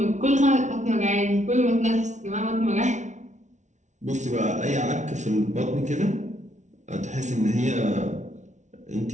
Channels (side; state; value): left; late; 0.35 ms